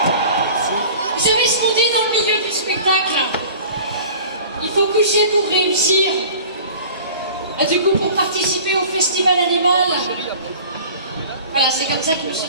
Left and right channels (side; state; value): both; inverted; correlation -0.42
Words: Vous savez ce qu'on dit dans le milieu du spectacle? Il faut coucher pour réussir. Et du coup, pour participer au festival animal, voilà, c'est comme ça que je me suis